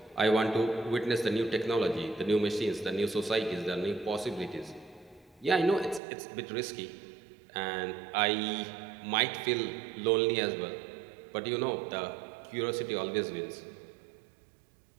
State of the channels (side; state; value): left; drops out; at 6.0 s